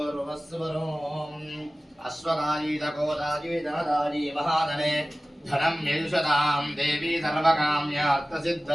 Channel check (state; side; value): normal; both; correlation 0.97